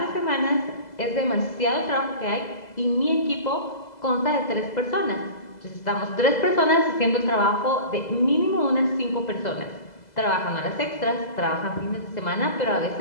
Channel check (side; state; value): right; late; 2.0 ms